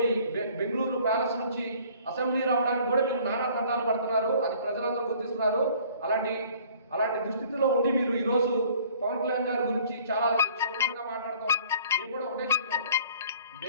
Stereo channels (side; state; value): both; inverted; correlation -0.53